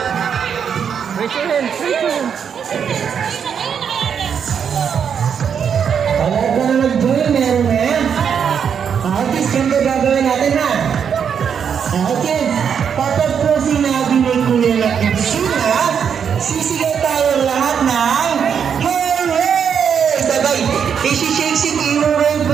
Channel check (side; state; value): left; quieter; 7.5 dB